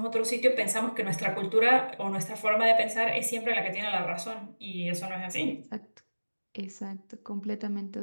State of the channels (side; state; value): both; inverted; correlation -1.00